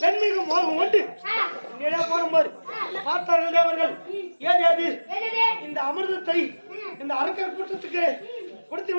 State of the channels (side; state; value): both; inverted; correlation -1.00